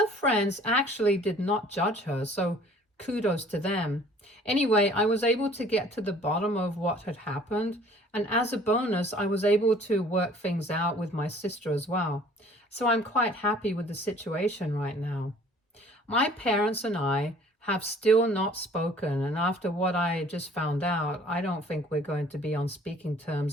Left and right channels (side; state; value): both; normal; correlation 0.53